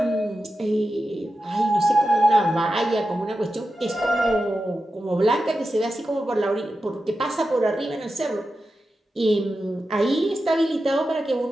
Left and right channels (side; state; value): both; normal; correlation 0.91